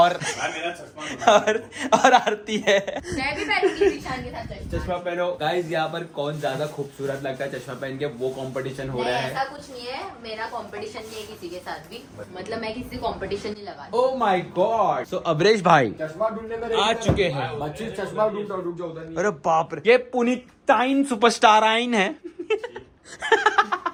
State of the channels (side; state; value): both; identical; correlation 1.00